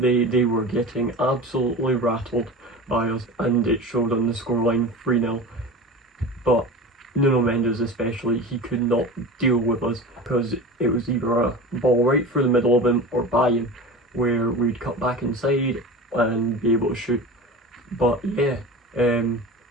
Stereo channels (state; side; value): normal; both; correlation 0.32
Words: were getting absolutely rattled by us, and it showed on the scoreline 3-0. But Nuno Mendes especially, he could not deal with us, because it was either a ball right through the middle of him or by him, where we'd cut back inside and be able to shoot. But yeah,